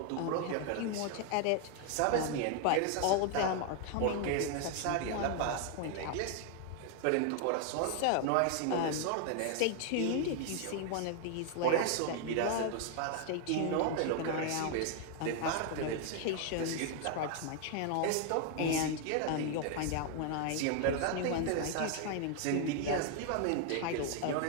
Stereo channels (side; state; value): both; different; correlation 0.00